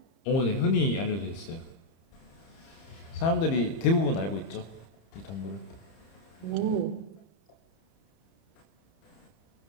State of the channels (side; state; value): right; late; 30 ms